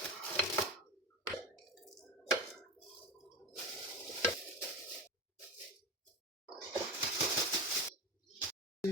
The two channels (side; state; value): both; normal; correlation 0.24